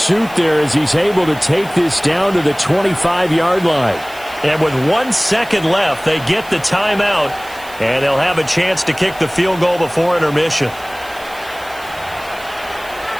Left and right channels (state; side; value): noise; right; hiss, 20 dB below the sound